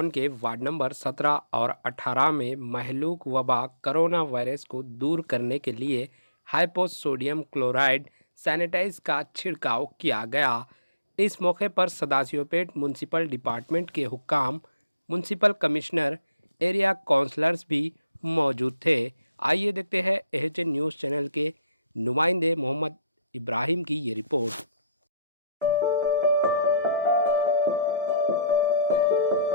के ward number 17 और 18 में महलूक वबा कोरोना वायरस को दूर करने के लिए हाइपोसोडियम क्लोराइड सैनिटाइज का छिड़काव किया गया। इस मौके पर सदाशिवपेट म्यूनसिपल डिपार्टमेंट के हुक्काम, म्यूनसिपल कमिश्नर, एरिया काउंसलर्स भी मौजूद थे। आइए देखते हैं एचएन न्यूज़ चैनल के नुमाइंदे मोहम्मद इब्राहिम की ये रिपोर्ट।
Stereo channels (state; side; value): inverted; both; correlation -0.71